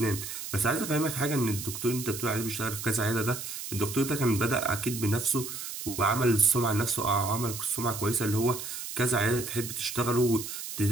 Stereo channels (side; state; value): right; noise; hiss, 8 dB below the sound